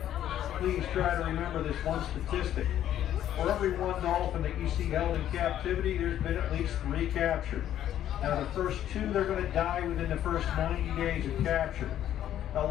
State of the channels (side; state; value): right; quieter; 11.4 dB